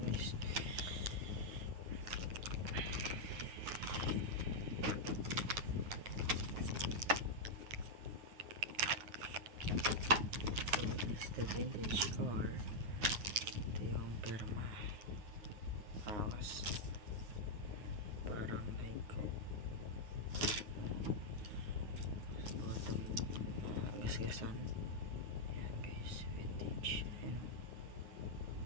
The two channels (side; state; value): left; late; 9.5 ms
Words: guys. The vintage car. Ito yung perma. Akas. Parang like bottom gasgasan. Ayan guys, vintage. Ayan.